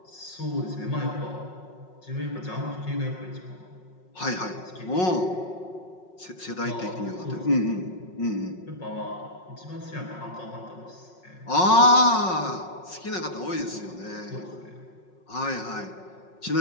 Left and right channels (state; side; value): late; right; 5.5 ms